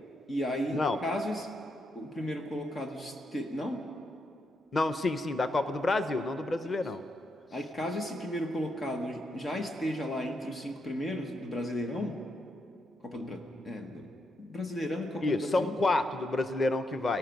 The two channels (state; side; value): normal; both; correlation 0.81